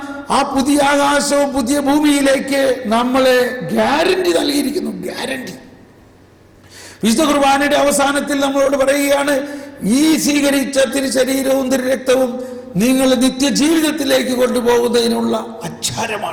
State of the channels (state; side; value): identical; both; correlation 1.00